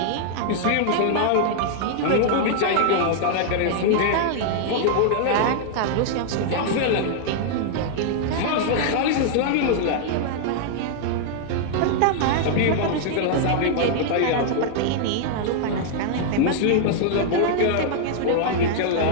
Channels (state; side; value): different; both; correlation -0.01